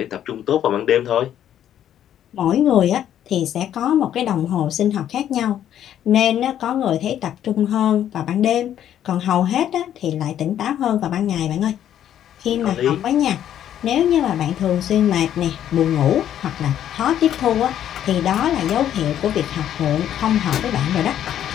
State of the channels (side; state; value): right; quieter; 10.7 dB